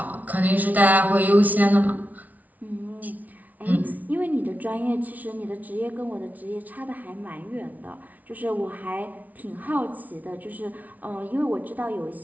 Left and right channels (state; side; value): late; left; 0.075 ms